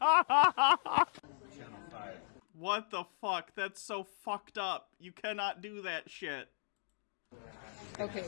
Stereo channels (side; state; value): right; silent; digital silence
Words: What the fuck? That's so fucked up. You cannot do that shit. Okay.